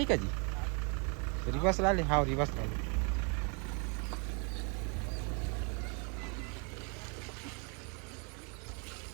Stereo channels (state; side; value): quieter; left; 35.5 dB